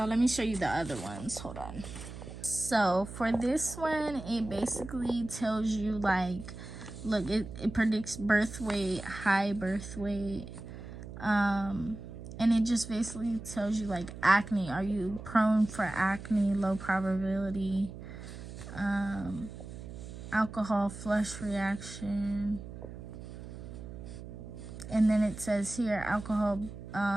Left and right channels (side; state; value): right; noise; hum, 11 dB below the sound